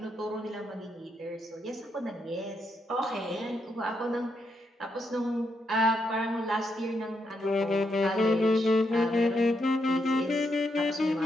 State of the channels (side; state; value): both; normal; correlation 0.80